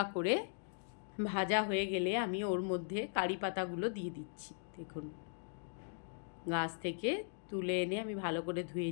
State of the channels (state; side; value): silent; right; digital silence